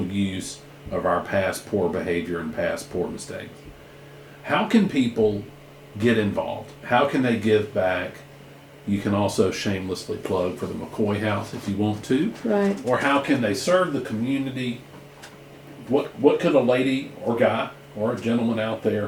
use of our past poor behavior and past poor mistakes. How can people get involved? How can they give back? You can also shamelessly plug for the McCoy House if you want to. Right. Or how can they serve the community? What could a lady or guy or a gentleman out there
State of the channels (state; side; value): identical; both; correlation 1.00